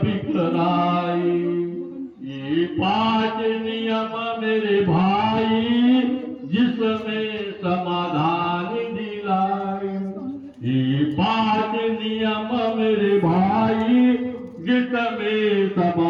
बिखराए, ये 5 नियम मेरे भाई जिसमें समाधान दिलाए। ये 5 नियम मेरे भाई जिसमें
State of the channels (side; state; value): both; identical; correlation 1.00